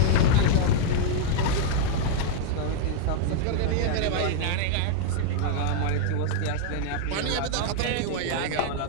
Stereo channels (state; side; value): different; both; correlation -0.01